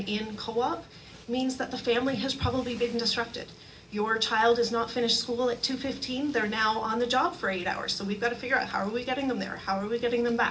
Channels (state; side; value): identical; both; correlation 1.00